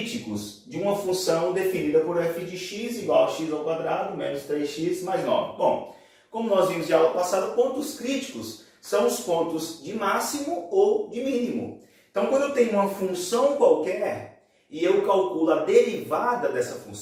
de uma função definida por f de x igual a x ao quadrado menos 3x mais 9? Bom, como nós vimos de aula passada, pontos críticos são os pontos de máximo ou de mínimo. Então, quando eu tenho uma função qualquer e eu calculo a derivada dessa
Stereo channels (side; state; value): both; identical; correlation 1.00